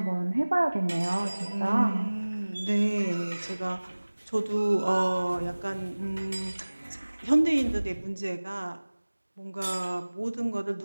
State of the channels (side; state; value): both; inverted; correlation -1.00